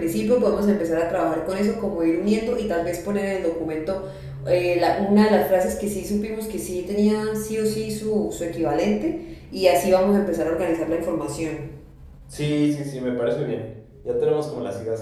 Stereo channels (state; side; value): identical; both; correlation 1.00